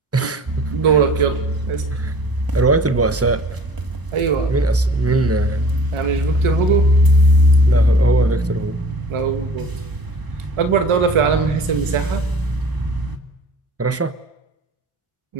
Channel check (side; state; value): both; normal; correlation 0.46